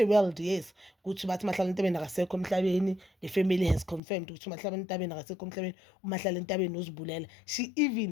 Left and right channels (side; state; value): right; drops out; at 4.0 s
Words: World, yes, ukuthi bathi Mahlala Entabeni akasekho emhlabeni. The family has confirmed ukuthi Mahlala Entabeni akasekho emhlabeni, uMahlala Entabeni uzibulela. She